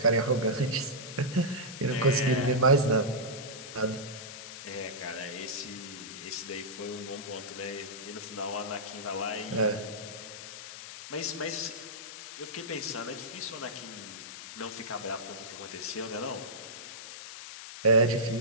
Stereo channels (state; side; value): noise; left; hiss, 11 dB below the sound